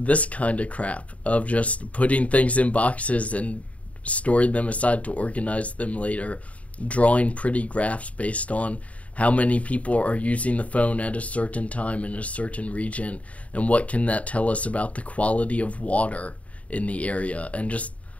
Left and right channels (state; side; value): late; right; 0.067 ms